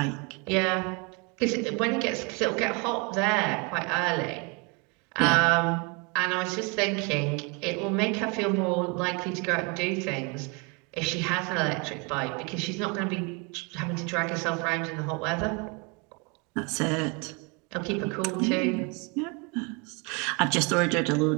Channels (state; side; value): quieter; left; 31.2 dB